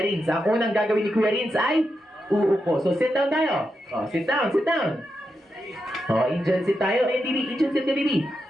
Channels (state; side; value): normal; both; correlation 0.86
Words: Renz. Ang unang gagawin ni Kuya Renz ay uupo. So sit down tayo. Oh, sit down. Oh, Indian sit tayo. Indian sit ka, baby.